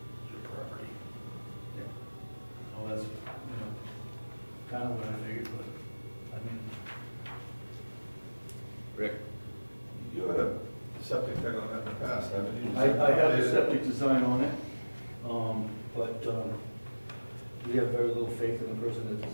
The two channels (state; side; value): inverted; both; correlation -1.00